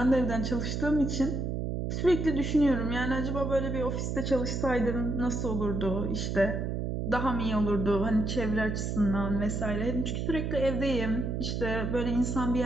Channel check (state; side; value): noise; right; hum, 2 dB below the sound